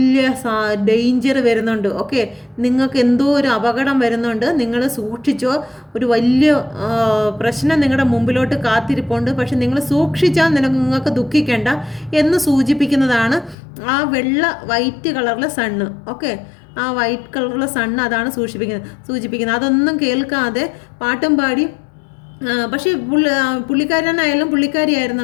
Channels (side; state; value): right; drops out; at 13.6 s